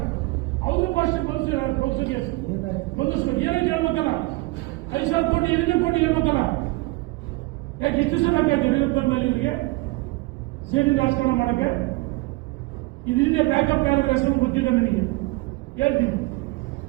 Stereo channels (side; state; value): left; quieter; 22.1 dB